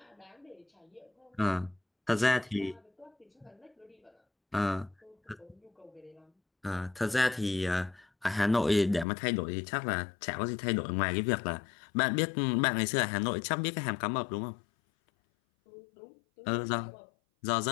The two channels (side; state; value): right; drops out; at 9.1 s